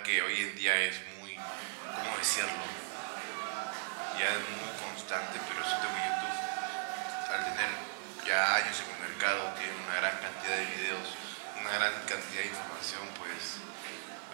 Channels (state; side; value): silent; left; 53 dB below the other